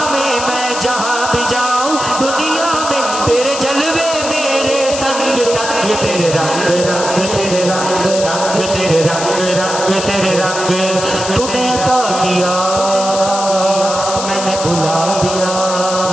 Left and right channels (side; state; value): left; noise; hiss, 7 dB below the sound